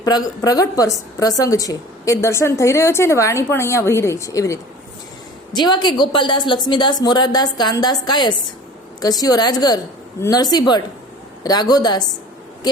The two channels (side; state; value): both; normal; correlation 0.43